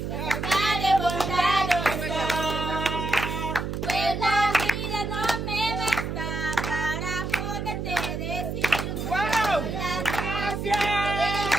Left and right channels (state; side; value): noise; right; hum, 4 dB below the sound